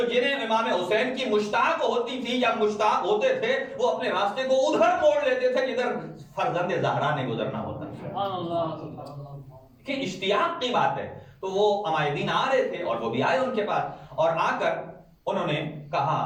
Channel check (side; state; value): both; identical; correlation 1.00